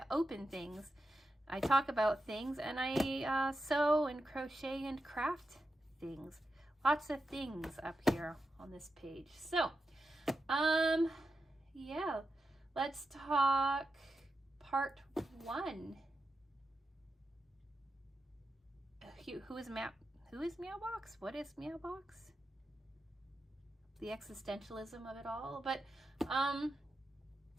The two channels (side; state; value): both; normal; correlation 0.89